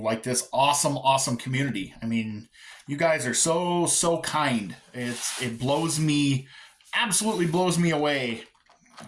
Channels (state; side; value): identical; both; correlation 1.00